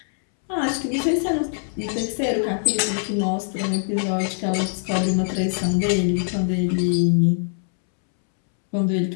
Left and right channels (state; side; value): silent; right; 64 dB below the other